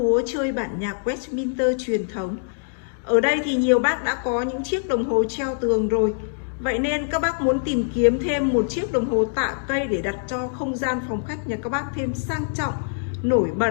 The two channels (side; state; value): right; silent; digital silence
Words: chơi bản nhạc Westminster truyền thống. Ở đây thì nhiều bác đã có những chiếc đồng hồ treo tường rồi. Vậy nên các bác muốn tìm kiếm thêm một chiếc đồng hồ tạ cây để đặt cho không gian phòng khách nhà các bác thêm sang trọng, nổi bật,